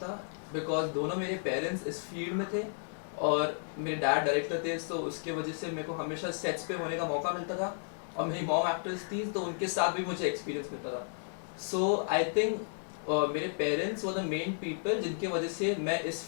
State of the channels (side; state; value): right; silent; digital silence